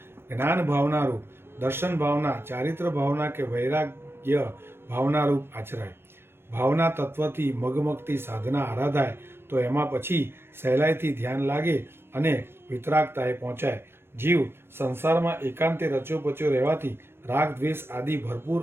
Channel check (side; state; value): left; late; 0.12 ms